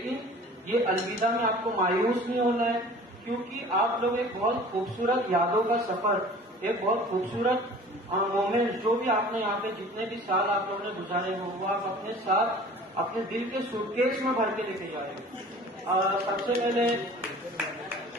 ये अलविदा में आपको मायूस नहीं होना है, क्योंकि आप लोग एक बहुत खूबसूरत यादों का सफर, एक बहुत खूबसूरत मोमेंट जो भी आपने यहाँ पे जितने भी साल आप लोगों ने गुजारे हो वो आप अपने साथ अपने दिल के सूटकेस में भर के लेके जा रहे हो। सबसे पहले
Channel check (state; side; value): normal; both; correlation 0.45